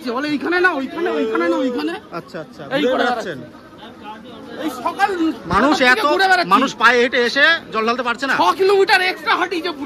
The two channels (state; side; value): identical; both; correlation 1.00